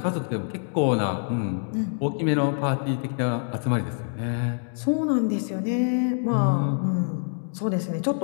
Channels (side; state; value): right; silent; 61 dB below the other